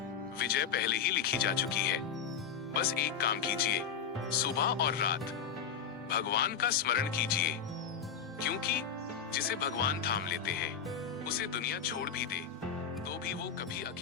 विजय पहले ही लिखी जा चुकी है। बस एक काम कीजिए, सुबह और रात भगवान का स्मरण कीजिए, क्योंकि जिसे भगवान थाम लेते हैं, उसे दुनिया छोड़ भी दे तो भी वो कभी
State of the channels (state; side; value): quieter; right; 7.2 dB